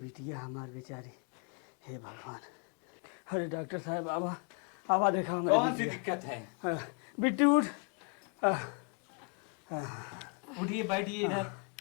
हमार बेचारी। हे भगवान। अरे डॉक्टर साहब आवा आवा, देखा कौन सी दिक्कत है? बिट्टी उठ। उठिए बैठिए इधर।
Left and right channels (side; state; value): right; quieter; 38.1 dB